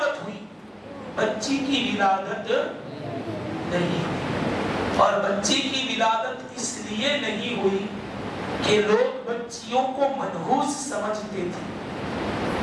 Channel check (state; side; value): identical; both; correlation 1.00